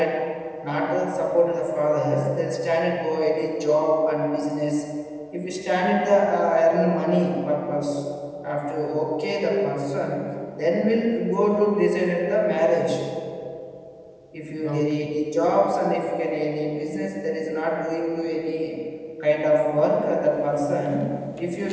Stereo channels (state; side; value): identical; both; correlation 1.00